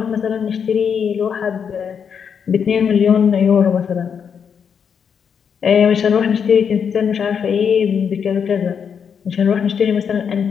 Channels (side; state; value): right; quieter; 7.1 dB